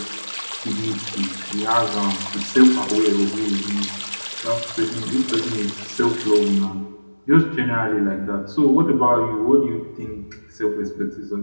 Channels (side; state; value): both; inverted; correlation -1.00